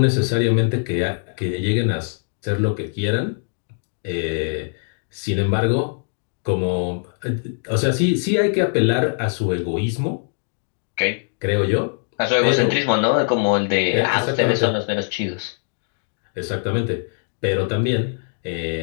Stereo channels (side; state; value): right; silent; digital silence